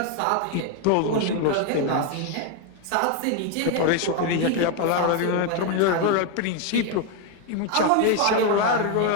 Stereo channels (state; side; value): different; both; correlation 0.01